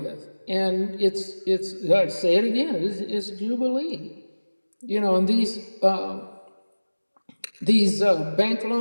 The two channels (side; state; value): both; inverted; correlation -1.00